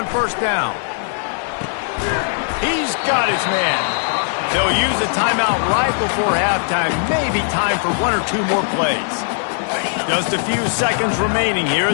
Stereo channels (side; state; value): right; silent; 67 dB below the other